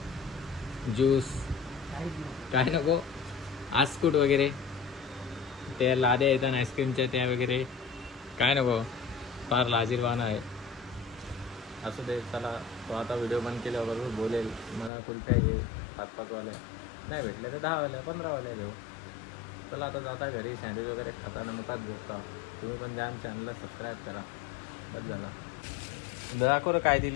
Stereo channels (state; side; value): drops out; right; at 14.9 s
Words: ज्यूस काय नको? आस्कुट वगैरे, त्या लाद्या येतात आईस्क्रीमच्या त्या वगैरे काय नको? फार लाजीरवाना आहे. असू दे. चला तो आता व्हिडिओ बंद केल्याबरोबर बोलेल मला कुल्फ्या घे 5-5 वाल्या, नाही भेटल्या तर 10 वाल्या 15 वाल्या घेऊ. चला आता जाता घरी, सँडविच वगैरे खाताना मुखात झोपता. तुम्ही पण द्या चॅनलला सबस्क्राईब करा. बस झाला. दाखव काय